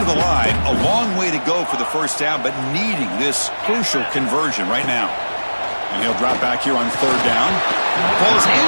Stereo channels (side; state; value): both; inverted; correlation -1.00